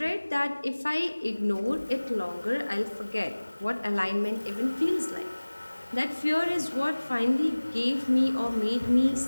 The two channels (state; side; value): inverted; both; correlation -1.00